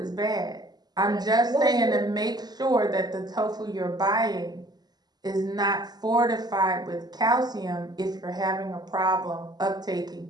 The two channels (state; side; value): late; left; 0.20 ms